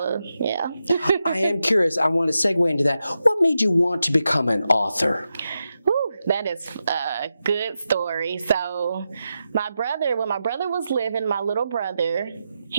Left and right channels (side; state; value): both; inverted; correlation -0.88